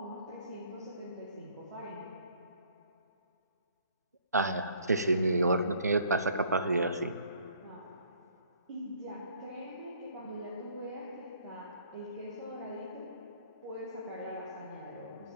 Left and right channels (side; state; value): both; inverted; correlation -0.59